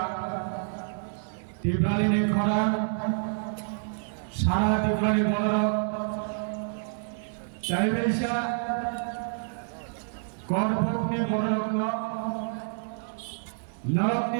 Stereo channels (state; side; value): silent; left; digital silence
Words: Tibrali Ni Khoran Sara Tibrali Bolorok Chaibesha Korbuk Ni Bolorok Norok